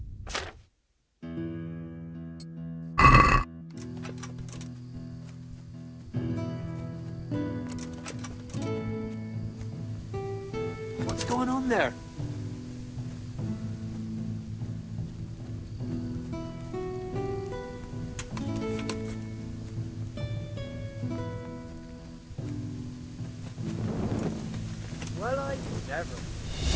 What's going on there? Well, I never.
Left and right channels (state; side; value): identical; both; correlation 1.00